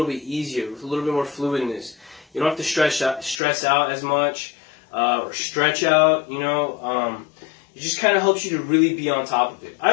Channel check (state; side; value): drops out; right; at 3.4 s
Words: bit easier with a little bit more fluidness. You don't have to stress out as much or stretch out. It just kind of helps you to really be on top of it.